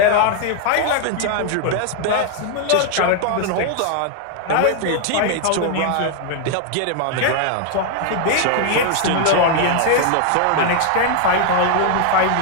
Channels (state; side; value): different; both; correlation 0.00